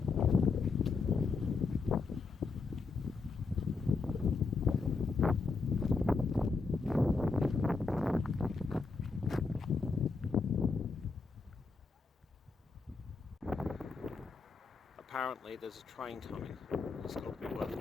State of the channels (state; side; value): quieter; right; 4.4 dB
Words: Apparently there's a train coming. It's got to be worth